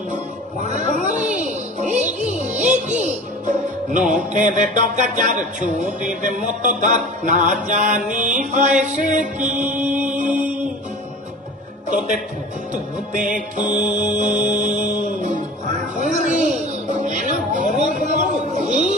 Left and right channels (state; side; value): normal; both; correlation 0.38